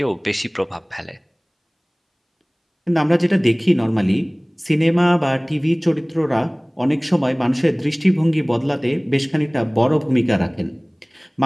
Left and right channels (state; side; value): identical; both; correlation 1.00